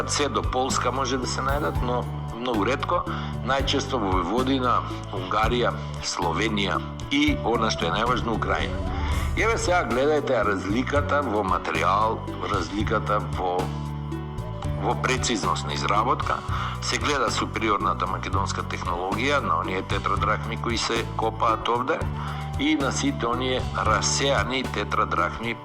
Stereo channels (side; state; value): both; identical; correlation 1.00